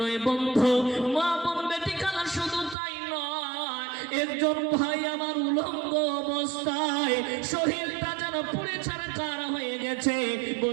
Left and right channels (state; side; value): drops out; left; at 2.8 s